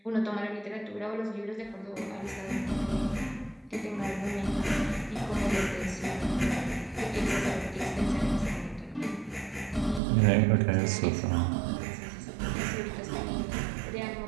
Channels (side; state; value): left; drops out; at 10.0 s